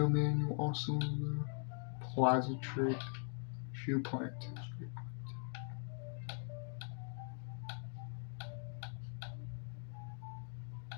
manual also. Plaza trick. Shoe plant.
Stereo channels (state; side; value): silent; right; 50 dB below the other